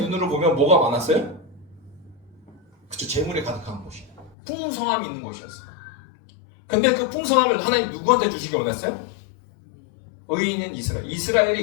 보면 뭐가 많았어요? 그쵸, 재물이 가득한 곳이, 풍성함이 있는 곳이었어요. 근데 그 풍성함을 하나님 누구한테 주시기 원했어요? 의인은 이스라엘이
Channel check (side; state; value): right; drops out; at 4.4 s